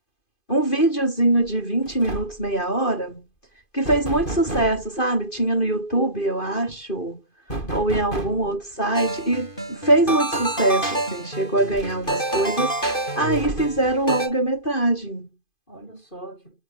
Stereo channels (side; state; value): right; late; 2.5 ms